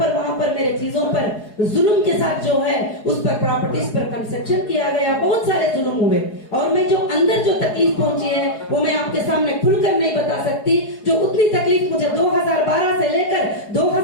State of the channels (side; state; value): right; late; 4.8 ms